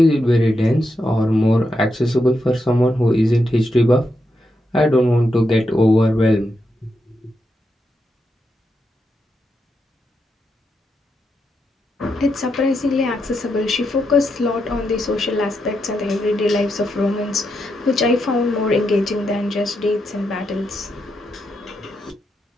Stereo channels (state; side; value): normal; both; correlation 0.83